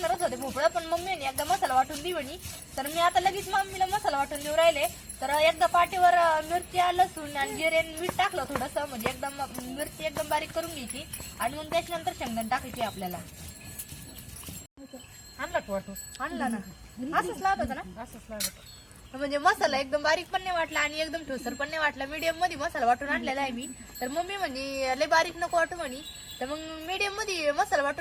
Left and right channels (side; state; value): both; identical; correlation 1.00